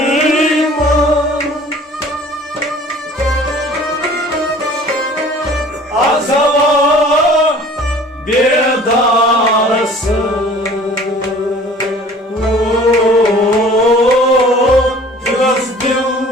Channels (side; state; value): both; normal; correlation 0.48